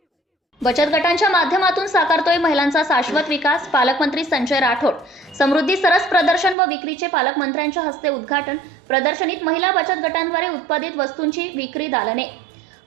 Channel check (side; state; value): left; drops out; at 6.6 s